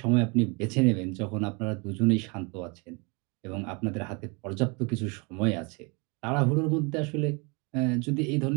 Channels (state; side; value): quieter; left; 30.6 dB